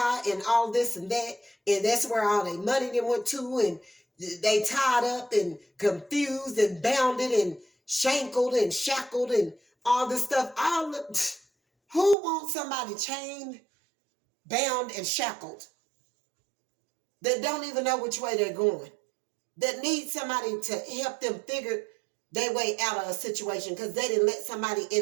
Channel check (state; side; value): drops out; left; at 12.2 s